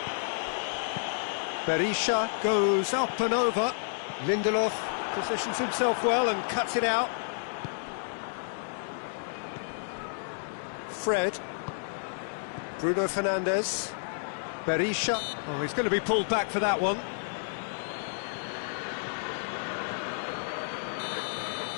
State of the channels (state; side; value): silent; right; digital silence